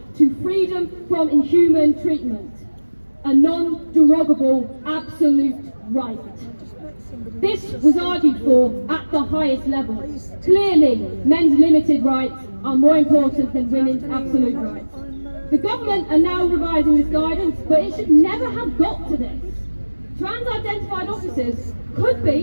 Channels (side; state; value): both; inverted; correlation -1.00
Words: to freedom from inhuman treatment, a non-derogable absolute right. This was argued for at the highest level. Clearly, men's limited rights are more important than women's absolute rights. The government are now revising this guidance, but it should never have got to this. Trans-identified officers could